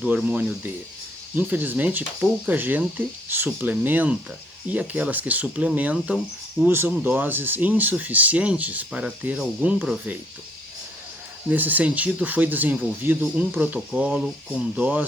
hormônio D. Infelizmente, pouca gente suplementa e aquelas que suplementam usam doses insuficientes para ter algum proveito. Nesse sentido, foi desenvolvido um protocolo com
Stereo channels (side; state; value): both; normal; correlation 0.65